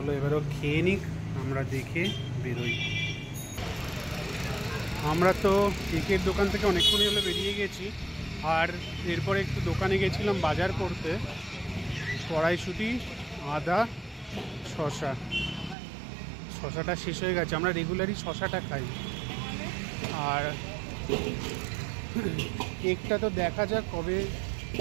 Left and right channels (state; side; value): drops out; left; at 15.8 s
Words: এবারও খেয়ে নিক, আমরা দেখে বেরোই। আমরা তো কেকের দোকান থেকে অনেকক্ষণই হলে বেরিয়ে গেছি, আর এরপরে একটু দোকানে গেছিলাম বাজার করতে। কড়াইশুঁটি, আদা, শশাটা শেষ হয়ে গেছে। আমরা রেগুলারই শশাটা খাই। আর কেকটা তো দেখা যাক কবে,